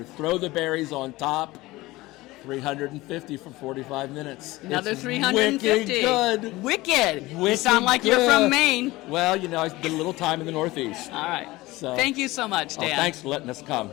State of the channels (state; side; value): quieter; right; 19.6 dB